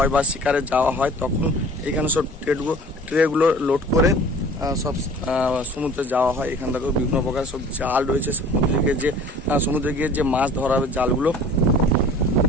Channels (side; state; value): both; normal; correlation 0.47